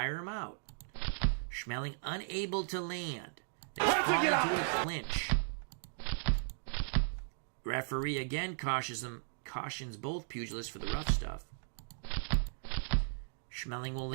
him out. Schmeling unable to land. They fall into a clinch. Referee again cautions both pugilists for the rough stuff. Schmeling will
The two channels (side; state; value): left; silent; digital silence